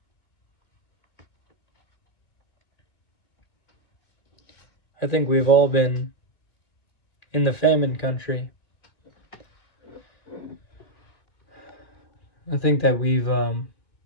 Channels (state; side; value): late; right; 2.3 ms